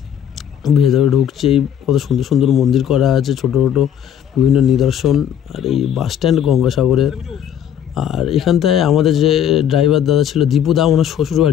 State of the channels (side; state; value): right; quieter; 9.4 dB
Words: ভেতরে ঢুকছে, কত সুন্দর সুন্দর মন্দির করা আছে, ছোটো ছোটো বিভিন্ন নিদর্শন। আর এই বাস স্ট্যান্ড গঙ্গাসাগরের। আর এখানটায় আমাদের যে ড্রাইভার দাদা ছিল দীপুদা, ওনার শ্বশুর